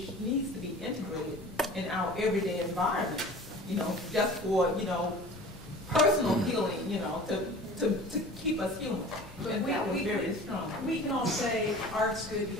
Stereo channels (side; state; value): both; normal; correlation 0.41